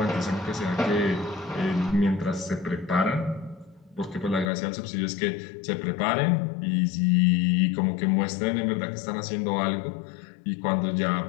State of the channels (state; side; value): drops out; right; at 4.5 s